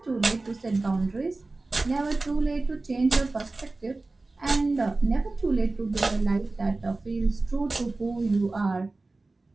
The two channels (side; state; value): left; quieter; 3.3 dB